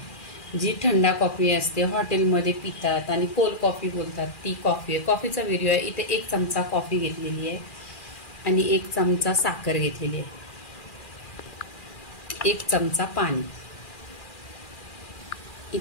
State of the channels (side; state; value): right; late; 2.4 ms